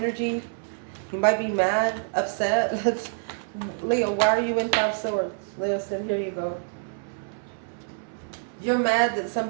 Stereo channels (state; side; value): silent; left; 60 dB below the other